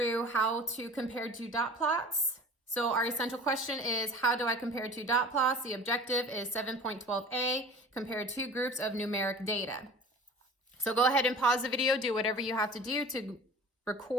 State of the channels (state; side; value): normal; both; correlation 0.41